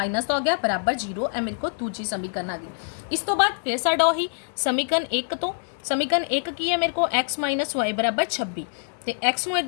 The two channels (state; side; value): silent; right; 57 dB below the other